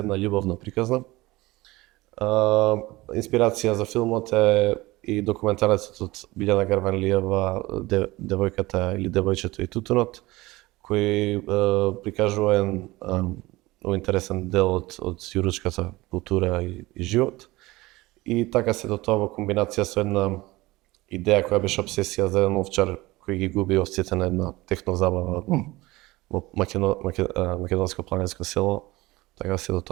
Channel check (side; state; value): left; quieter; 20.0 dB